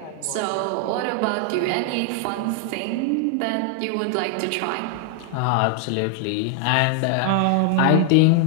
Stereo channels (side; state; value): both; different; correlation 0.00